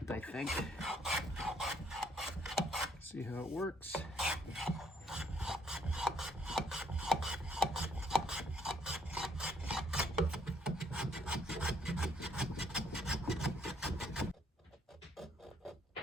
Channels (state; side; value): normal; both; correlation 0.68